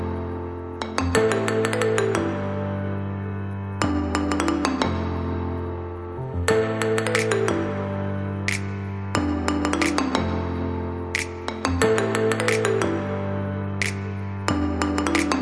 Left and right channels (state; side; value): identical; both; correlation 1.00